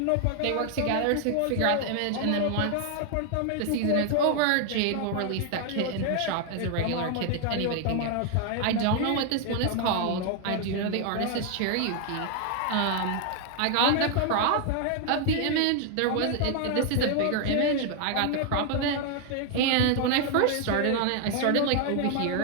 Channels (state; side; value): different; both; correlation 0.00